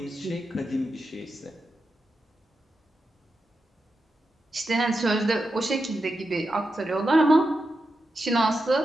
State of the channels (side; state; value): both; normal; correlation 0.88